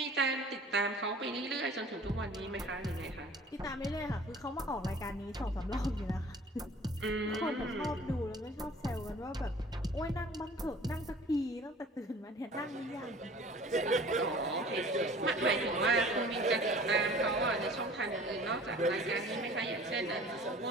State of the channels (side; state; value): both; normal; correlation 0.48